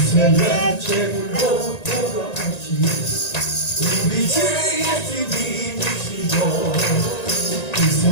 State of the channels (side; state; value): right; late; 1.9 ms